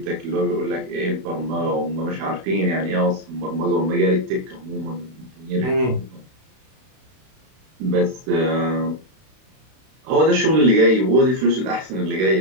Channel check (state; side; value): late; left; 32 ms